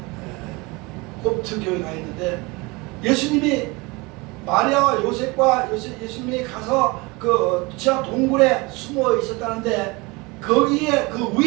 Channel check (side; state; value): left; quieter; 25.3 dB